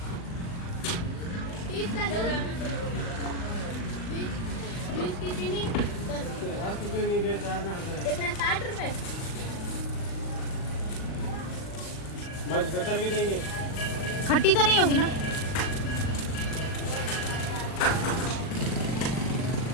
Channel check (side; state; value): right; late; 39 ms